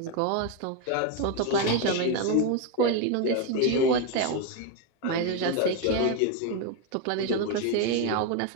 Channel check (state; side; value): different; both; correlation 0.02